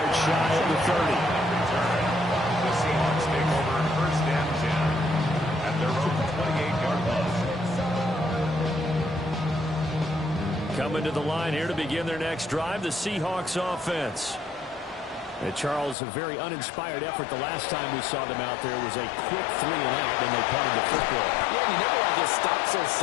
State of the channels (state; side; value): drops out; right; at 16.0 s